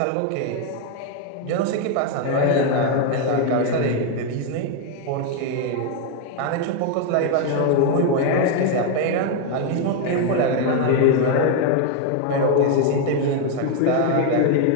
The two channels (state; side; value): different; both; correlation 0.01